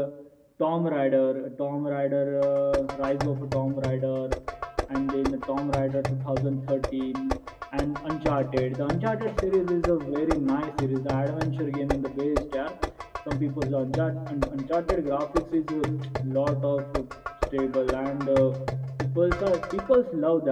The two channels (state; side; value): identical; both; correlation 1.00